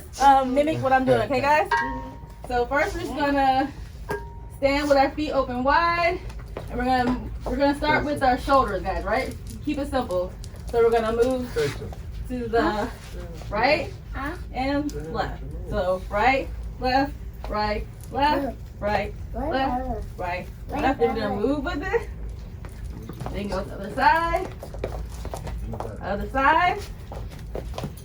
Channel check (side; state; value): both; identical; correlation 1.00